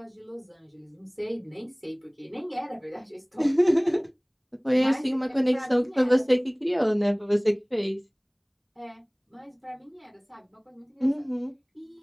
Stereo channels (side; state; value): both; identical; correlation 1.00